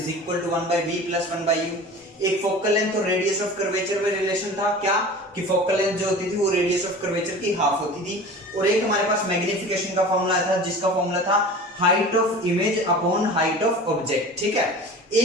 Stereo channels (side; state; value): both; normal; correlation 0.38